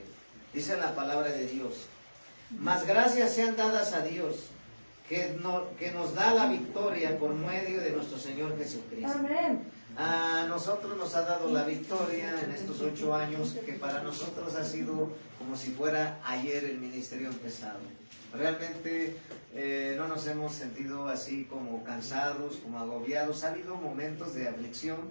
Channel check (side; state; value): both; inverted; correlation -1.00